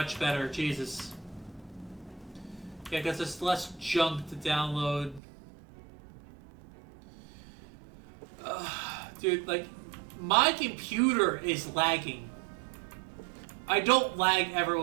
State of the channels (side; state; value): left; drops out; at 5.2 s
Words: better. Jesus. Yeah, because there's less junk to download. Dude, like, my computer is lagging. I don't lag ever